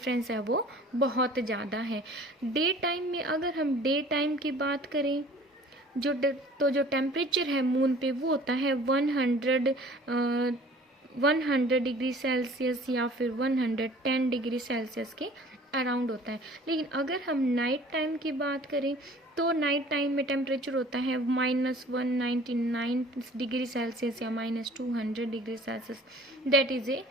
है वो बहुत ज़्यादा है। डे टाइम में अगर हम डे टाइम की बात करें तो जो टेम्परेचर है मून पे वो होता है 100 डिग्री सेल्सियस या फिर 110 डिग्री सेल्सियस के अराउंड होता है। लेकिन अगर हम नाइट टाइम की बात करें तो नाइट टाइम में टेम्परेचर होता है -199 डिग्री सेल्सियस या -200 degree Celsius. That is a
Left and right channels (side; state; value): both; normal; correlation 0.49